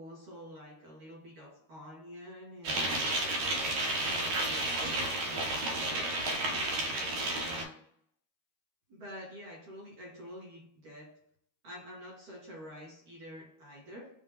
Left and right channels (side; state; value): left; late; 13 ms